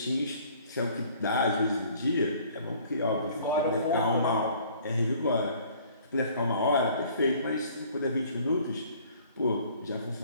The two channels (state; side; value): inverted; both; correlation -0.55